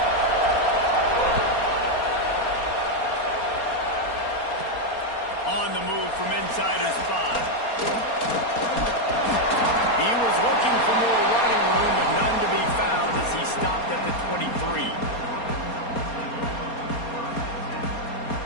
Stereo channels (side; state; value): right; late; 4.3 ms